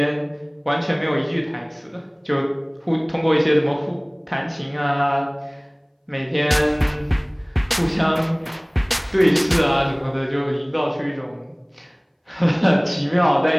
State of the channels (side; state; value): both; identical; correlation 1.00